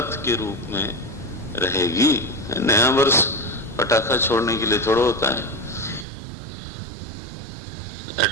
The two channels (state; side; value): drops out; left; at 6.1 s